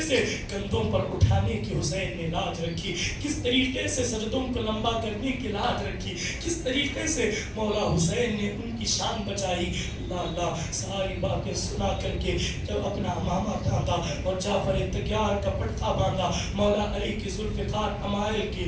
سے کندھوں پر اٹھانے کی حسین نے لاج رکھی، کس طریقے سے سجدوں کو لمبا کرنے کی لاج رکھی، کس طریقے سے مولا حسین نے ان کی شان بچائی. اللہ اللہ ساری باتیں سنا کر کے جب اپنا امامہ ڈھانپا اور جعفر تیار کا پٹھا باندھا مولا علی کی ذوالفقار امائل کی،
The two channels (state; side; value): identical; both; correlation 1.00